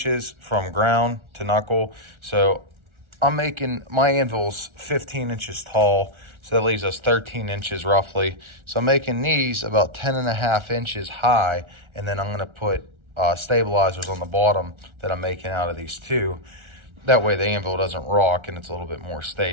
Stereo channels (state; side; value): late; left; 1.4 ms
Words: from ground to knuckle. So I'm making my anvils 15 inches tall. So that leaves us 13 inches roughly. So I'm making these about 10.5 inches high. And then I'm gonna put stabilizers on the bottom that I'm making out of these two. That way the anvil doesn't rock and it's a little bit more